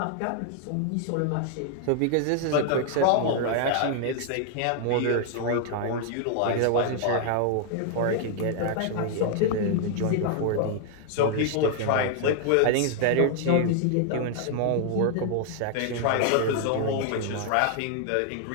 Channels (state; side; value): different; both; correlation 0.00